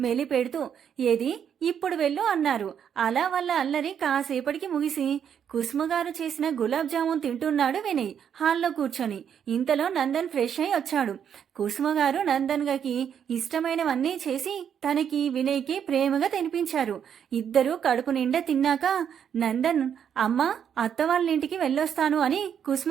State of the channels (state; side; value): quieter; left; 8.4 dB